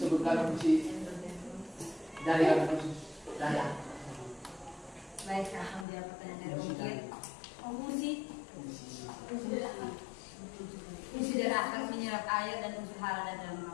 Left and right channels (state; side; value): drops out; right; at 5.9 s